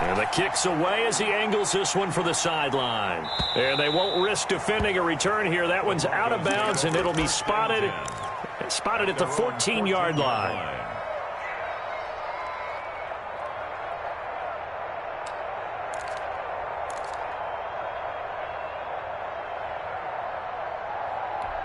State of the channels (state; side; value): identical; both; correlation 1.00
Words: And the kick's away as he angles this one for the sideline. And they won't risk defending a return here. That one's out of bounds, and it'll be spotted at the 14-yard line.